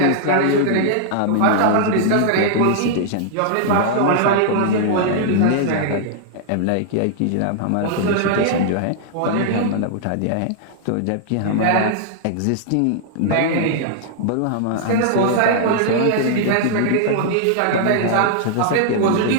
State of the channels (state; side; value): different; both; correlation -0.01